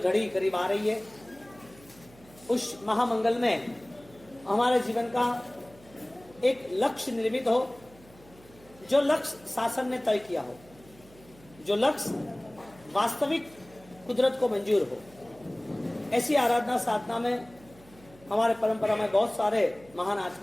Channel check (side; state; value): right; noise; hum, 24 dB below the sound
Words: करीब आ रही है। उस महामंगल में हमारे जीवन का एक लक्ष्य निर्मित हो, जो लक्ष्य शासन ने तय किया हो, जो लक्ष्य वास्तविक कुदरत को मंजूर हो। ऐसी आराधना साधना में हमारे परंपरा में बहुत सारे महान